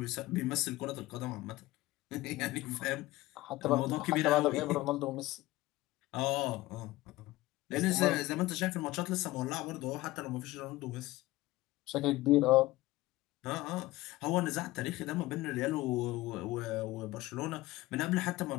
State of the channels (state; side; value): quieter; right; 18.3 dB